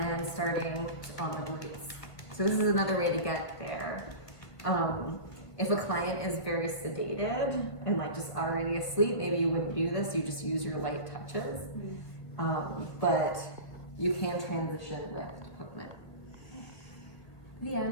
starting on the glutes. So this is another way to get there. If a client is very sedated and like just already asleep, maybe you wouldn't do this, you just use your light touches. But you can transition with equipment. The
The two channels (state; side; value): late; right; 1.8 ms